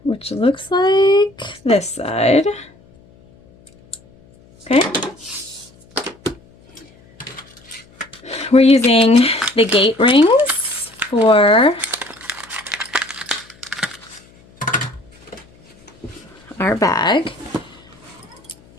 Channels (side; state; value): left; noise; hum, 27 dB below the sound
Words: Which looks like this side. Okay. We're using the gate rings for our bag.